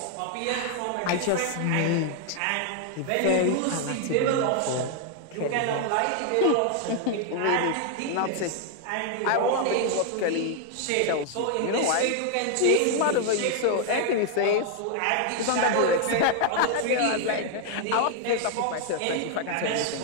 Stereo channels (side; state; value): both; different; correlation 0.00